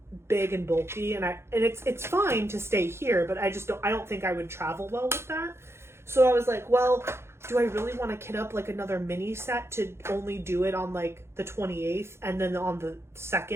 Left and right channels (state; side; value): late; left; 0.12 ms